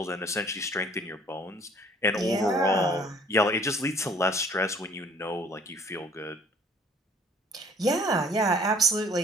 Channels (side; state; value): both; normal; correlation 0.55